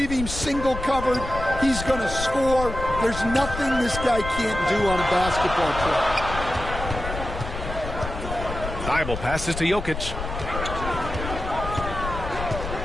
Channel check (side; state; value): left; noise; rumble, 7 dB below the sound